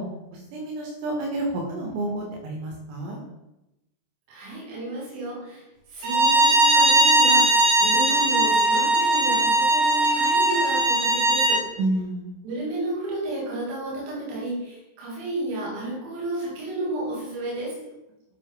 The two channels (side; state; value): left; late; 27 ms